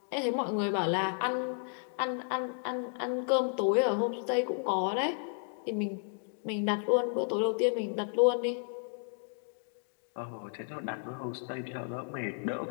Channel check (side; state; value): right; silent; 56 dB below the other